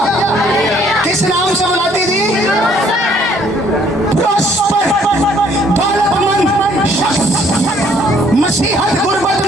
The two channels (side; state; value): both; normal; correlation 0.62